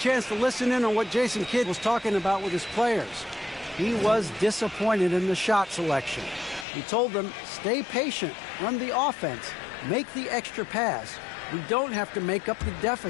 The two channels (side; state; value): right; drops out; at 6.7 s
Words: to listen in on what Jason Kidd was talking about with his players. He was disappointed in the shot selection. He told them, stay patient, run the offense, make the extra pass. We don't have to make up the